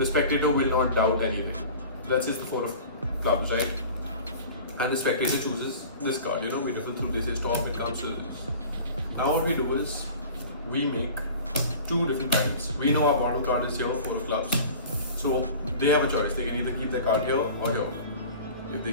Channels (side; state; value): both; inverted; correlation -0.40